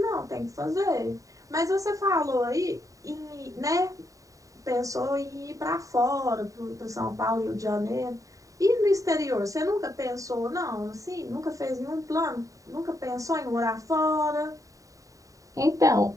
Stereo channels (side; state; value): left; late; 0.16 ms